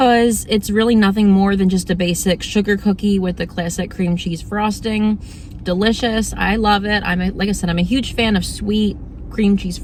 it's really nothing more than just a basic sugar cookie with the classic cream cheese frosting. Delicious. I love it. Like I said, I'm a huge fan of sweet cream cheese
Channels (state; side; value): identical; both; correlation 1.00